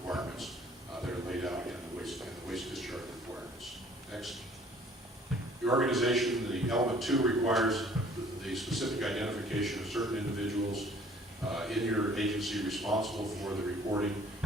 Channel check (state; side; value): normal; both; correlation 0.54